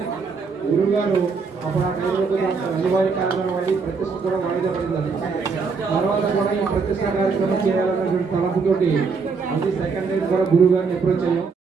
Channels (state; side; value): quieter; left; 5.0 dB